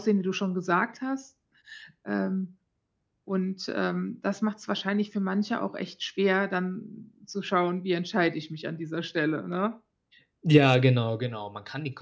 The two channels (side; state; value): both; identical; correlation 1.00